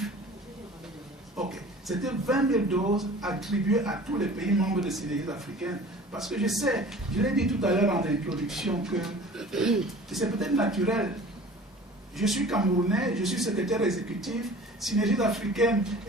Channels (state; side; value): normal; both; correlation 0.44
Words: Ok. C'était 20 000 doses attribuées à tous les pays membres de Synergies africaines. Parce que je sais, je l'ai dit tout à l'heure en introduction, que c'est peut-être naturel. Je suis Camerounais, je suis secrétaire exécutif. Synergies africaines